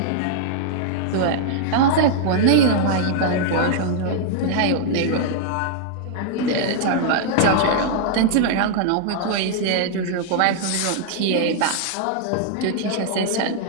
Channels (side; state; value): both; different; correlation -0.01